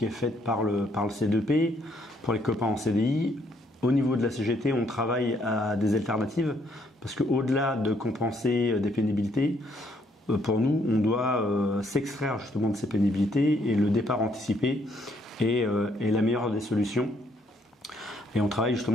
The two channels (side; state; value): both; normal; correlation 0.70